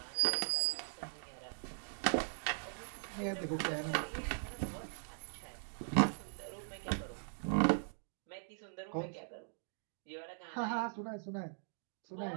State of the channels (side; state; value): left; silent; digital silence